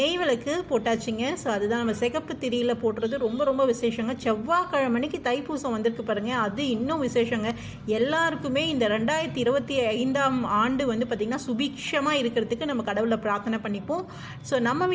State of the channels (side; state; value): both; identical; correlation 1.00